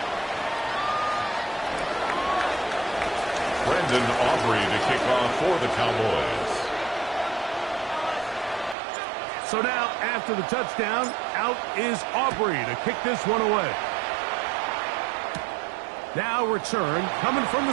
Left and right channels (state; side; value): drops out; left; at 8.8 s